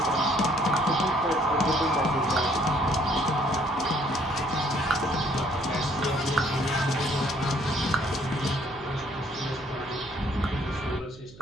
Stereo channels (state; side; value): noise; right; hum, 20 dB below the sound